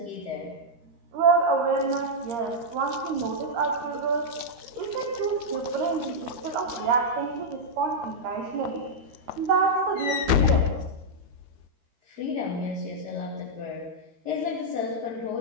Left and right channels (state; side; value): late; left; 13 ms